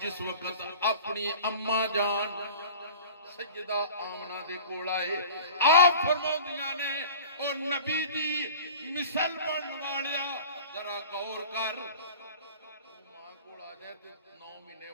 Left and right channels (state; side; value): inverted; both; correlation -0.41